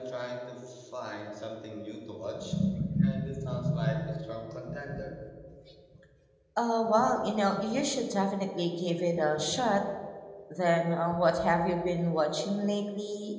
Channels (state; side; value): identical; both; correlation 1.00